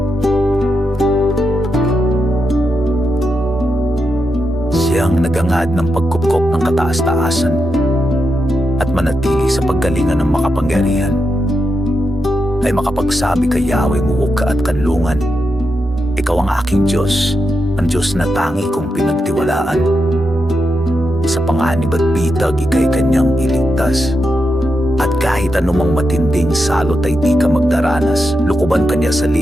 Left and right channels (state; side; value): normal; both; correlation 0.86